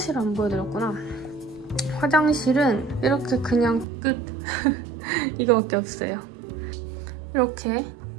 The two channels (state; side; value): drops out; left; at 3.9 s